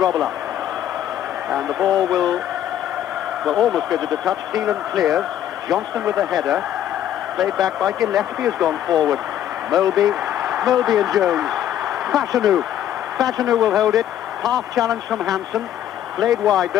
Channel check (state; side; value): quieter; right; 11.1 dB